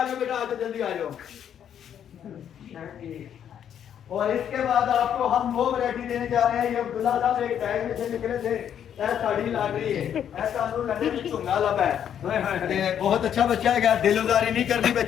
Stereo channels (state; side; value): quieter; right; 9.2 dB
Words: जाओ जल्दी आ जाओ। और इसके बाद आपको हम वो वैरायटी देने जा रहे हैं। ये अब्दुल्ला साहब एक बैग में से निकले थे, साड़ी लाग रही है, ऐसा लंडे में चुंगा लब है। बहुत अच्छा बच्चा है, क्या दिलदारी नहीं करनी